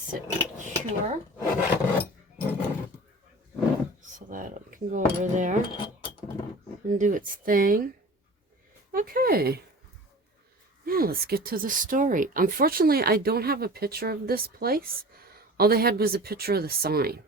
and cure. So that it can go over there and do its thing. Okay. Now let's get to the story. Unfortunately, I don't have a picture of this place. All they had was a picture of the sign.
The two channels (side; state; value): both; normal; correlation 0.39